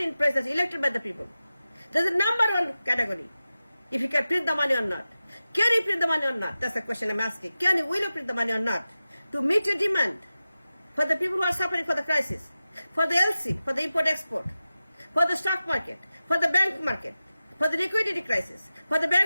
in place that's elected by the people. There's a number one category. If you can print the money or not. Can you print the money or not? That's the question I'm asking. Will you print the money or not? To meet your demand for the people who are suffering for the crisis, for the LC, for the import-export, for the stock market, for the bank market, for the liquidity crisis, for the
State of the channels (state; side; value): inverted; both; correlation -0.94